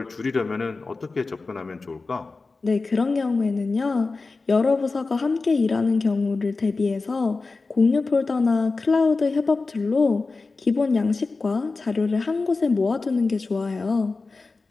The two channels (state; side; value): quieter; right; 3.9 dB